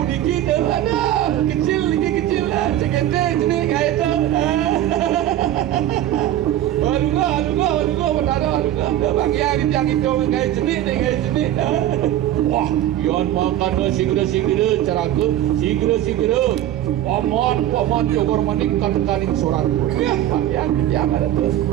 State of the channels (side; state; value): left; quieter; 12.6 dB